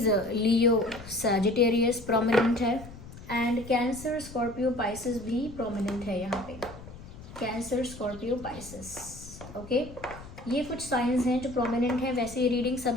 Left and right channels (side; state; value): left; noise; rumble, 16 dB below the sound